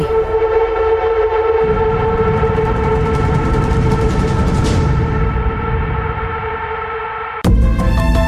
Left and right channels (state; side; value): identical; both; correlation 1.00